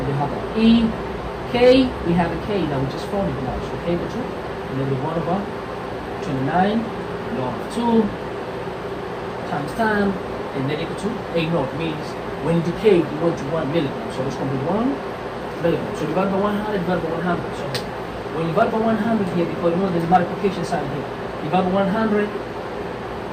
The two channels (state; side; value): identical; both; correlation 1.00